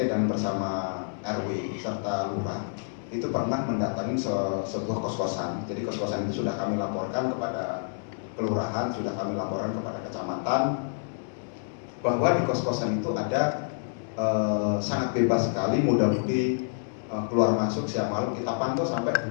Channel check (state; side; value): silent; right; digital silence